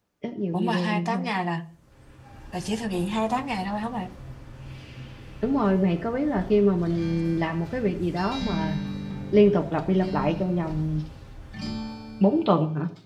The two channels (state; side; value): identical; both; correlation 1.00